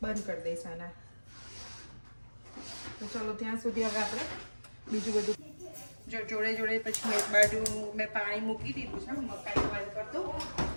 બંધ કરી દઈશ આના. તો ચાલો ત્યાં સુધી હવે આપણે બીજું બધું જો જોડે જોડે પછી એક બાજુ મેં પાણી મૂકી દીધું છે મકાઈ બોઇલ કરી દઉં.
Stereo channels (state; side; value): inverted; both; correlation -1.00